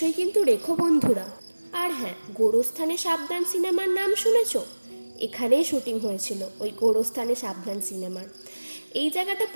কিন্তু রেখো বন্ধুরা। আর হ্যাঁ, গোরস্থানে সাবধান সিনেমার নাম শুনেছ? এখানেই শুটিং হয়েছিল ওই গোরস্থানে সাবধান সিনেমার। এই জায়গাটা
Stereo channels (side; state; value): both; inverted; correlation -1.00